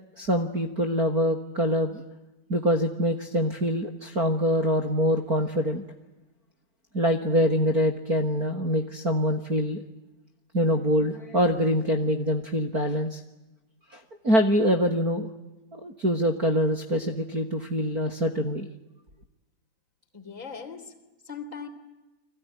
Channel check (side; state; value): left; late; 4.4 ms